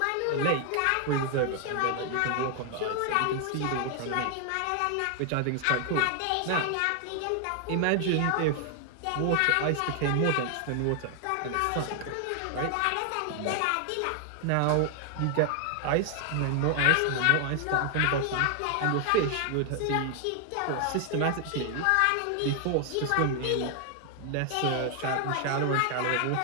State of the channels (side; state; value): both; different; correlation 0.00